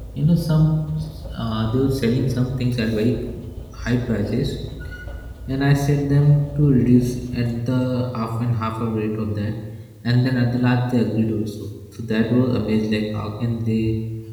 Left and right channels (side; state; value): both; identical; correlation 1.00